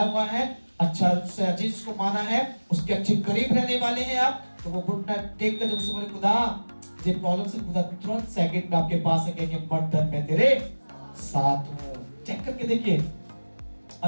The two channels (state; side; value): inverted; both; correlation -1.00